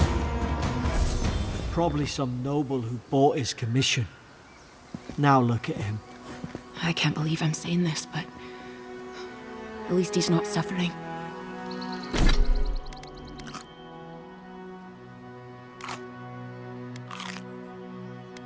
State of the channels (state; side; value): identical; both; correlation 1.00